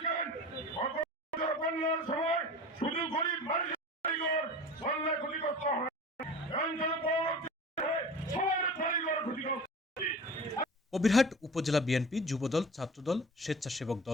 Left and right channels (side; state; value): both; normal; correlation 0.38